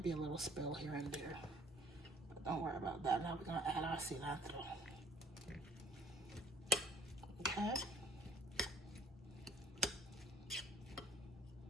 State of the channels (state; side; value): normal; both; correlation 0.56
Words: be a little spill here and there, but don't worry about that. Now we're gonna add our cilantro. Okay.